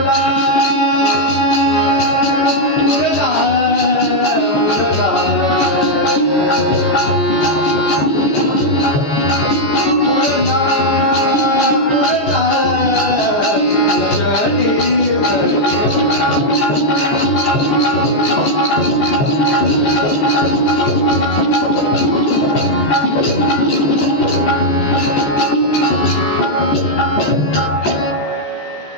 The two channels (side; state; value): right; late; 14 ms